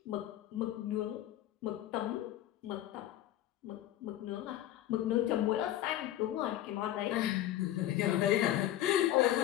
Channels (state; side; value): quieter; right; 13.1 dB